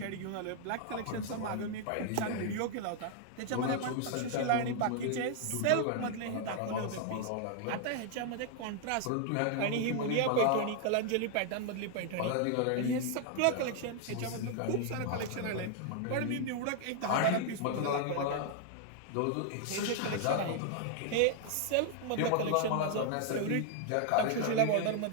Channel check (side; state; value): both; different; correlation 0.00